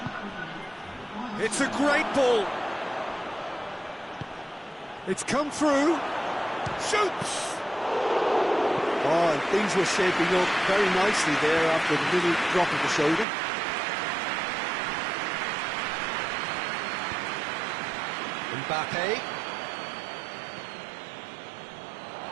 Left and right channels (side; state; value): left; drops out; at 13.2 s